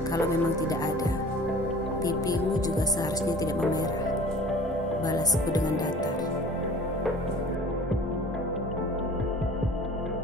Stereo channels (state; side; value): normal; both; correlation 0.45